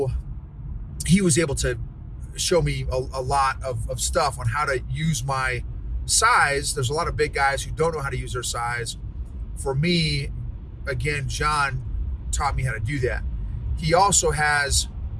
he was able to show me a lot of stuff on how to use my size. There's a lot of big guys who don't know how to use their size. For me, again, John taught me how to do that. He also has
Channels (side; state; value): both; identical; correlation 1.00